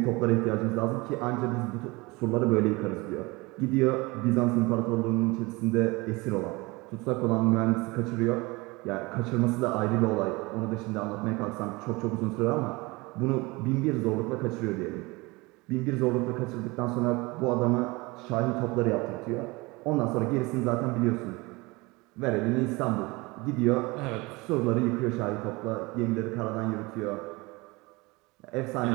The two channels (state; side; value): quieter; left; 24.0 dB